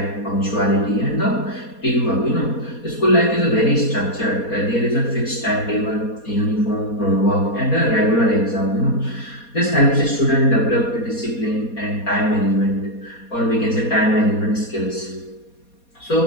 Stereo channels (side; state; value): right; late; 4.2 ms